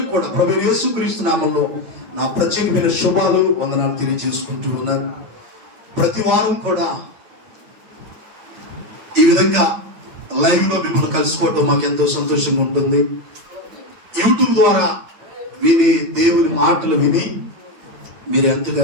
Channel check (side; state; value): left; late; 8.8 ms